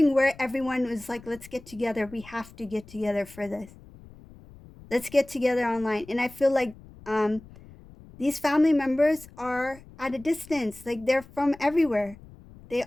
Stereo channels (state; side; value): noise; left; rumble, 21 dB below the sound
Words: where everyone was like, let's get together. We have to get together for this. Let's get together online. And I feel like um, these family members are at a distance, like they're from everywhere. They